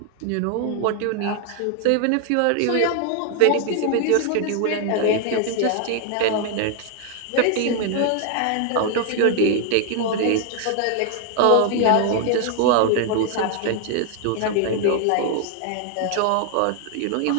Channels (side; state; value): both; different; correlation 0.00